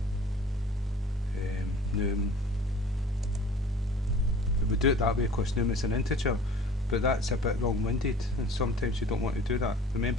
num. We do it that way because num is an integer, but that's a bit long-winded, and sometimes you don't want to do that.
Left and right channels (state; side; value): normal; both; correlation 0.46